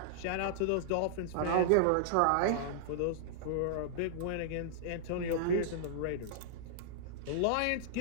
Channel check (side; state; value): both; different; correlation -0.01